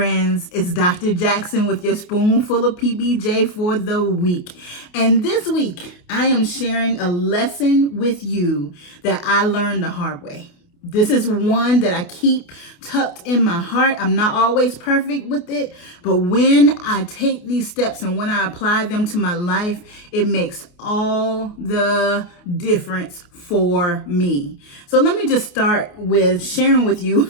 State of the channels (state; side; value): late; right; 28 ms